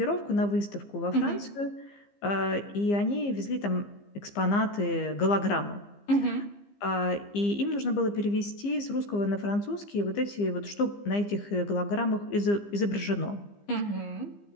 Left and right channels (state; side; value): late; right; 15 ms